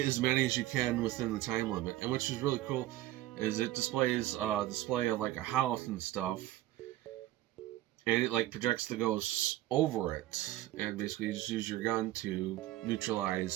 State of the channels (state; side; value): quieter; left; 15.5 dB